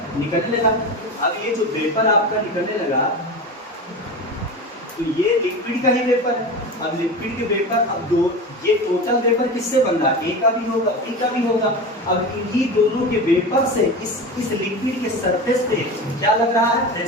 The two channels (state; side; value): normal; both; correlation 0.27